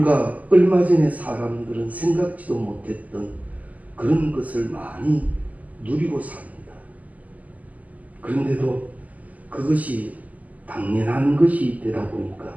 얼마 전에 사람들은 생각지도 못했던 그런 것을 많이 누리고 삽니다. 그런데도 그것이 당연한 것이 되다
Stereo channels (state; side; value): late; left; 0.076 ms